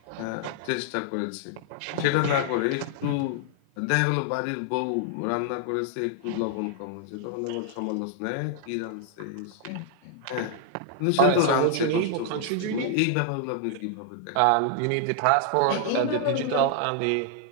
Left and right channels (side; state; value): both; different; correlation 0.00